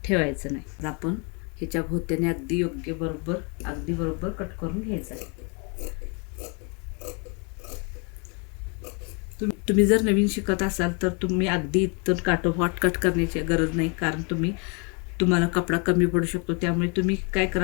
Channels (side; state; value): right; quieter; 34.4 dB